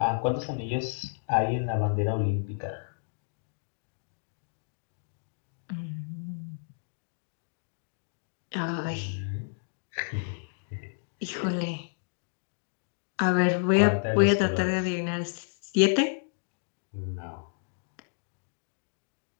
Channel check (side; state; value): right; silent; digital silence